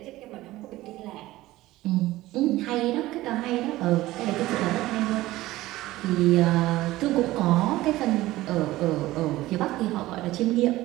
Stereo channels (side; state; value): left; quieter; 17.1 dB